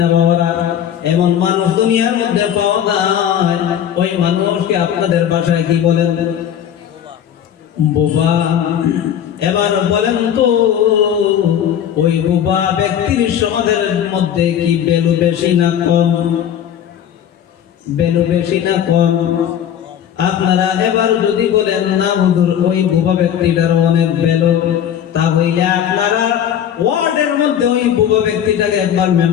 বাবারা? এমন মানুষ দুনিয়ার মধ্যে পাওয়া যায়। ওই মানুষকে আপনাদের ভাষায় কি বলেন? বোবা। এবার বলেন তো, ওই বোবা ব্যক্তির সমাজের মধ্যে কি বেলু বেশি না কম? বেলু বেশি না কম? আপনারা এবার যদি বলেন না হুজুর ওই বুবা ব্যক্তিটার অনেক বেলো, তাহলে আপনারা ওয়ার্ডের মধ্যে ওই বুবা ব্যক্তিটাকে একবার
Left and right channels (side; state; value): right; quieter; 9.6 dB